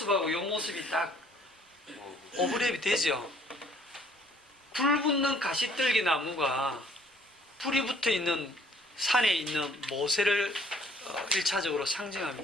요 모습이 딱 오버랩이 되죠. 불 붙는 가시떨기 나무가 불이 붙어 있는 산에 있는 모세를 1차적으로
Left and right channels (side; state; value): both; normal; correlation 0.59